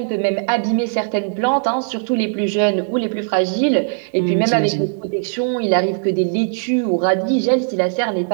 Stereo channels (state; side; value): silent; left; 67 dB below the other